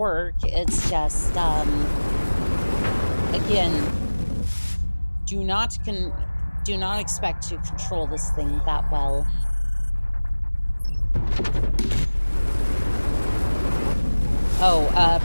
It's just again, do not expect to control this thing that well. Oh,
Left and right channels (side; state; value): both; inverted; correlation -1.00